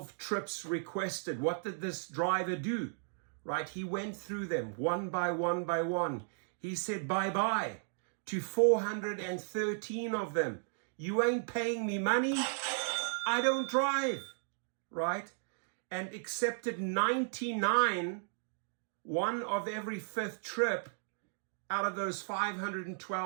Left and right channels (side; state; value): left; silent; digital silence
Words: trips requested. What did this driver do, right? He went through them one by one by one. He said bye-bye to 413 of them. You ain't paying me money, I don't drive, right? And accepted 99, one of every fifth trip out of those